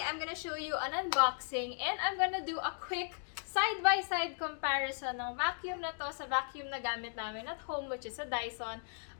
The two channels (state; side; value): silent; right; 54 dB below the other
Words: I'm gonna show you an unboxing and I'm gonna do a quick side-by-side comparison ng vacuum na to sa vacuum na gamit namin at home, which is a Dyson.